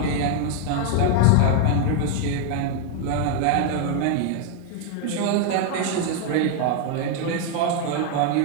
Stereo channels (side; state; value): both; different; correlation 0.00